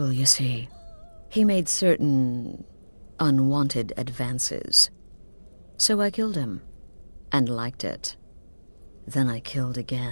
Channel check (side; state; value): both; inverted; correlation -1.00